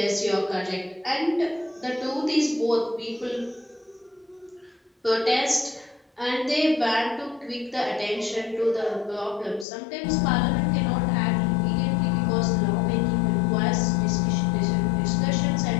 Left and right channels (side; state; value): right; drops out; at 9.7 s